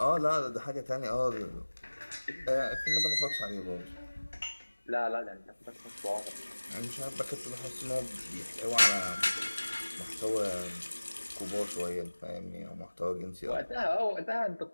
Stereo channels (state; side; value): inverted; both; correlation -1.00